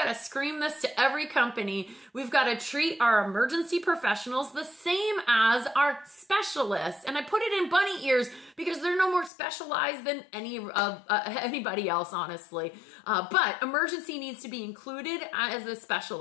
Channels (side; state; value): right; drops out; at 9.3 s